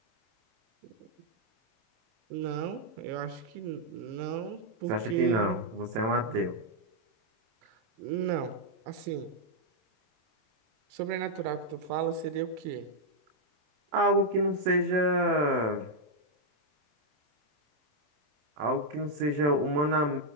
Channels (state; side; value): late; left; 27 ms